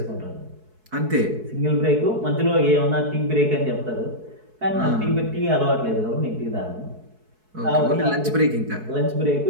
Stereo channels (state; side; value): late; left; 4.6 ms